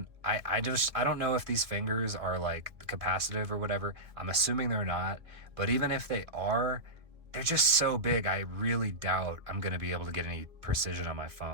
I don't know if these fingers are like capacitive or whatever. I'm assuming they're not, but even if they are, they're just so big, I really doubt I'm gonna be able to get any precision on my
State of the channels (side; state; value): left; late; 2.2 ms